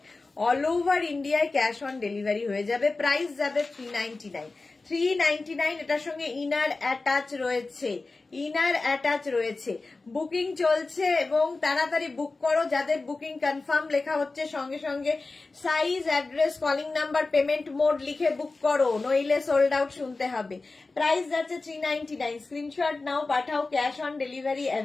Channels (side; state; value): right; quieter; 3.6 dB